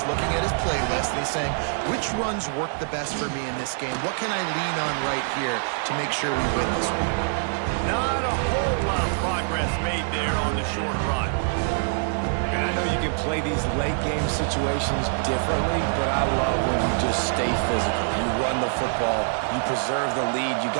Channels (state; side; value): silent; left; digital silence